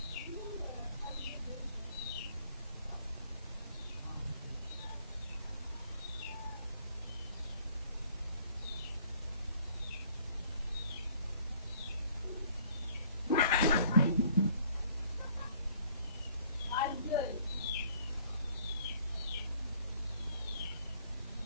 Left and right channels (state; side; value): inverted; both; correlation -0.59